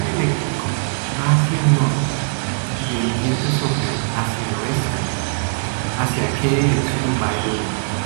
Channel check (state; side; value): silent; left; digital silence